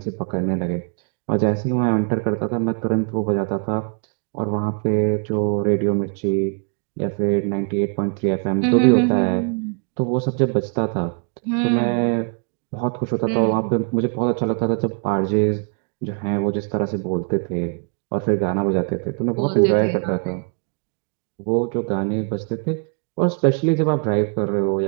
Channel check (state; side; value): quieter; left; 37.2 dB